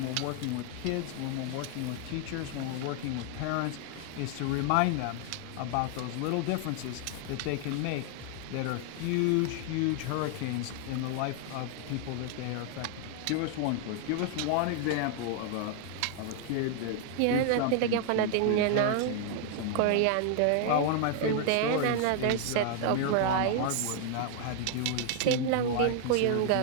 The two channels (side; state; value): both; different; correlation 0.00